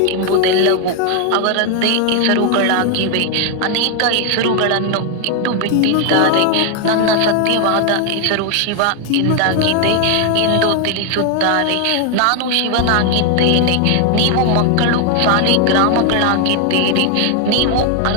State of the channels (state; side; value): different; both; correlation 0.01